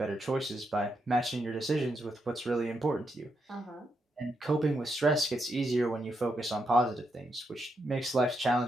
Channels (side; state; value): both; normal; correlation 0.81